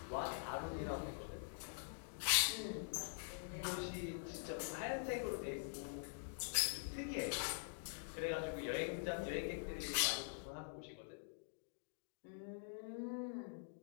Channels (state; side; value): silent; right; digital silence